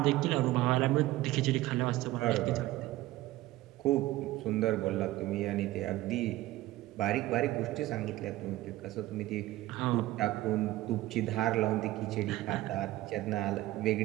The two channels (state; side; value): quieter; left; 16.6 dB